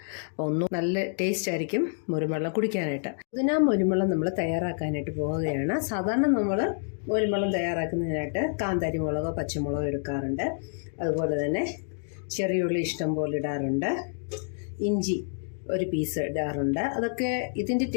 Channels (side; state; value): right; silent; digital silence